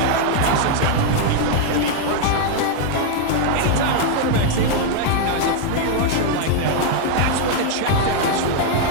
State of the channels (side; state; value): both; different; correlation 0.00